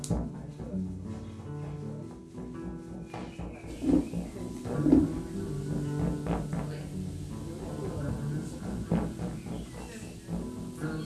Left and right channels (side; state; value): both; identical; correlation 1.00